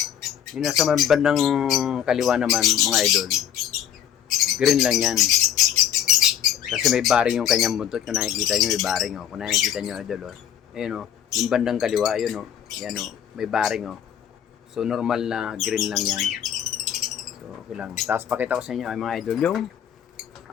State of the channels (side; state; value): right; quieter; 9.7 dB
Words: Yung nasa bandang kaliwa naman mga idol, green lang yan kasi may baring yung kanyang buntot. Kung nakikita nyo may baring kung nakikita nyo idol ayun yung bandang kaliwa ayun yan may baring so normal na green lang yan. So okay lang. Tapos pakita ko sa inyo ay mga idol yung